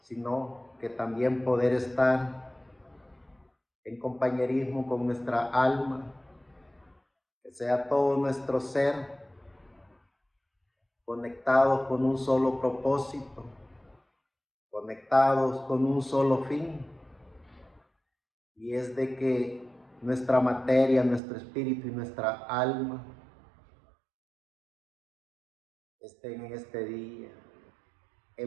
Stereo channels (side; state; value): left; drops out; at 21.2 s